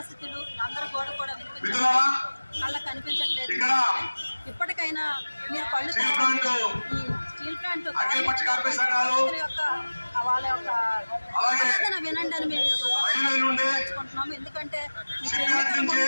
అందరూ కూడా వినిపించట్లేదు, వాళ్ళకి కనిపించట్లేదు. ఇప్పటికైనా మీరు కళ్ళు ఈ స్టీల్ ప్లాంట్ యొక్క వాళ్ళ యొక్క ఆవేదన వినండి అని మేము తెలుసుకుంటున్నాము. ఎందుకంటే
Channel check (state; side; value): inverted; both; correlation -1.00